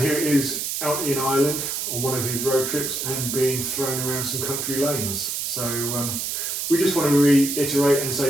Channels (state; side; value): noise; right; hiss, 2 dB below the sound